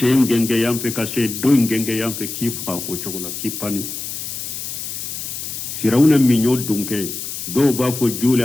genge yamfe ka se do genge yamfe ki fa ko chokola ki pani firawna mi nyo dunke do ba fo jule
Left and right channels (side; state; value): left; noise; hiss, 7 dB below the sound